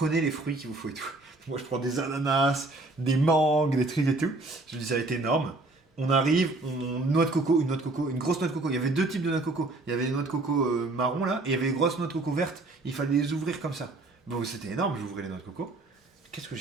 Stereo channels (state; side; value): quieter; left; 3.0 dB